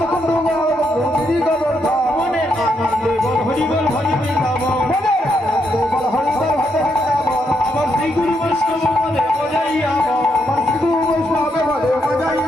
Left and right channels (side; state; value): both; normal; correlation 0.79